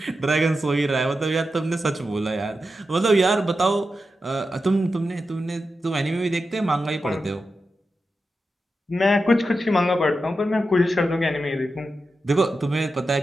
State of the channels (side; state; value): both; normal; correlation 0.90